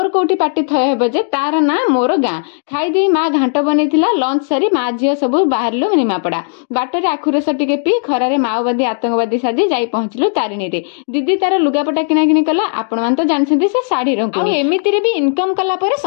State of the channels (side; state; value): right; silent; digital silence